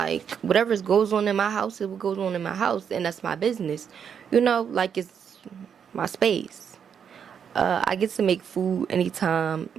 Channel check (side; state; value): left; quieter; 7.6 dB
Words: whatever goes on in my house, it goes on in my house, and that's my business. You know, like it's my space. I get to make food anytime.